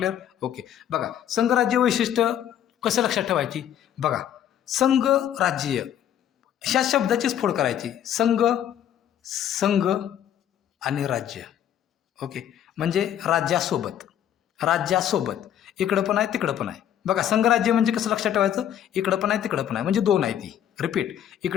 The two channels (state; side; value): quieter; right; 10.3 dB